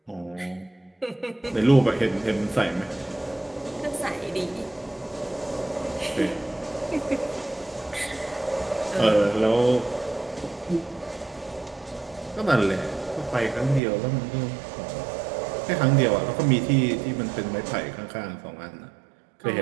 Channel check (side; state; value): left; drops out; at 13.8 s